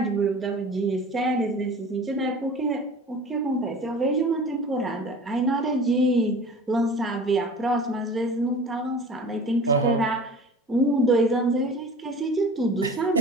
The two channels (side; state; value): both; normal; correlation 0.41